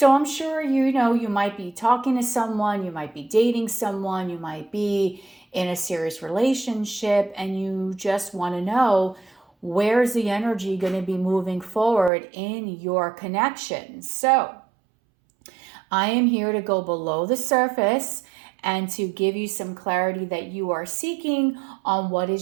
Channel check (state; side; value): drops out; left; at 12.1 s